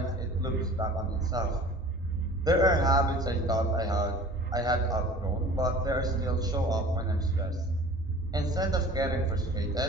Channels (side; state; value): both; normal; correlation 0.44